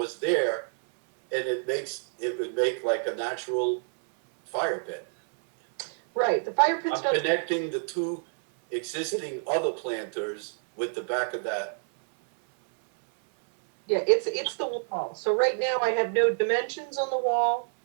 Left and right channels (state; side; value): silent; left; 60 dB below the other